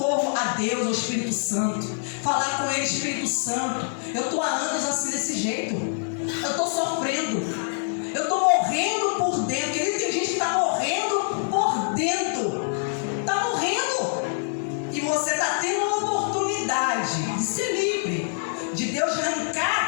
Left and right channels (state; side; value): silent; right; digital silence